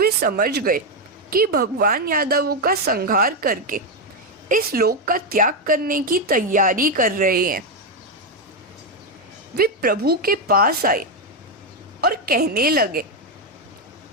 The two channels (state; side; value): normal; both; correlation 0.05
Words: समझ गए कि भगवान यादवों का संहार करके इस लोक का त्याग करने की तैयारी कर रहे हैं। वे प्रभु के पास आए और कहने लगे,